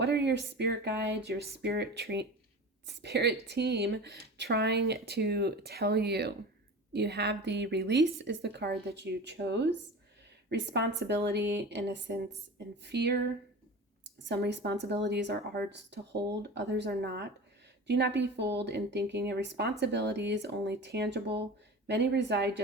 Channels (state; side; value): normal; both; correlation 0.33